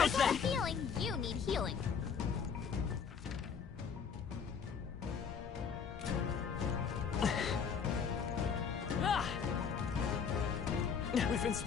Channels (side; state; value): right; quieter; 6.5 dB